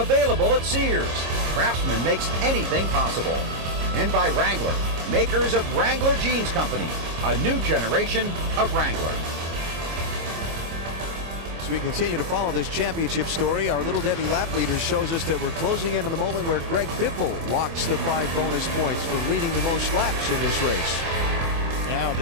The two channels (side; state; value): left; late; 24 ms